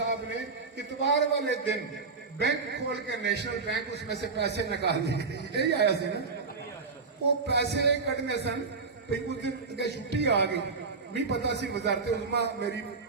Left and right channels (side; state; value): left; quieter; 4.5 dB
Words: نے اتوار والے دن بینک کھول کے نیشنل بینک اس میں سے پیسے نکال دیے یہی آیا سی نا وہ پیسے کٹنے سن اس دن چھٹی آ گئی نہیں پتا سی وزارت عظما میری